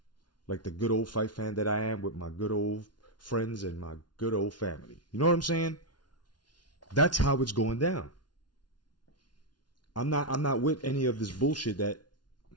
Like the good old fight fan that I am, with my good old friends and my good old family. You know what I'm saying? That's how it's going down. I'm not with any of this bullshit that,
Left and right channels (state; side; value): late; right; 0.70 ms